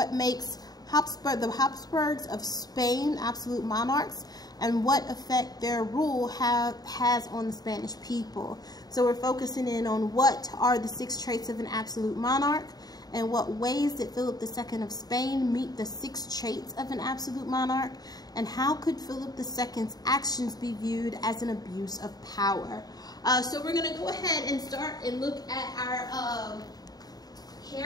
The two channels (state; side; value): late; right; 0.19 ms